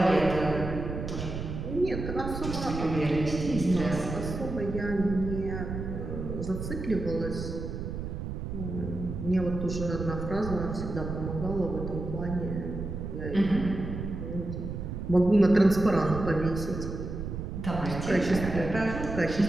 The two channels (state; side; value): noise; right; rumble, 6 dB below the sound